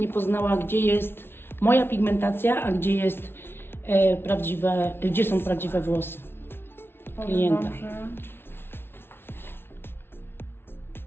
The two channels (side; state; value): right; late; 0.11 ms